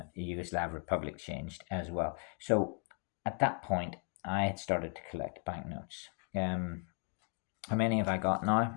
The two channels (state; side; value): quieter; right; 39.6 dB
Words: Republic changed as well. So at that point, I had started to collect banknotes. How many have I got